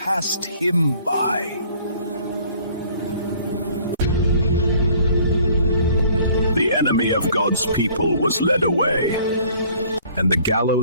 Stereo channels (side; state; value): both; inverted; correlation -0.55